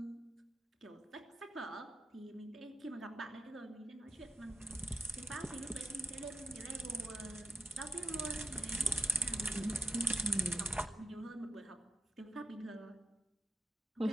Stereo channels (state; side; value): normal; both; correlation 0.90